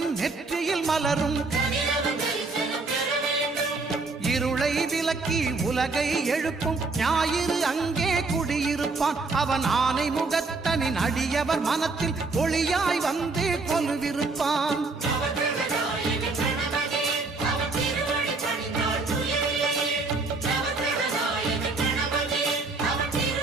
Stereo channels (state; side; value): quieter; left; 3.8 dB